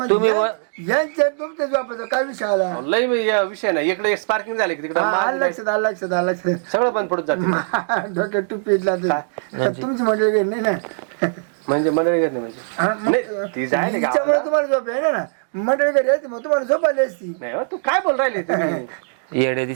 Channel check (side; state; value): left; silent; digital silence